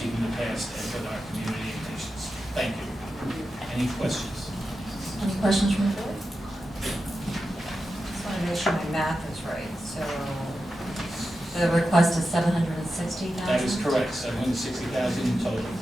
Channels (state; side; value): normal; both; correlation 0.91